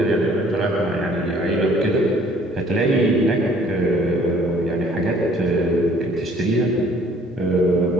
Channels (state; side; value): normal; both; correlation 0.57